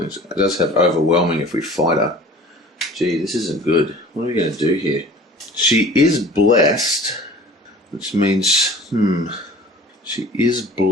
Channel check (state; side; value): normal; both; correlation 0.45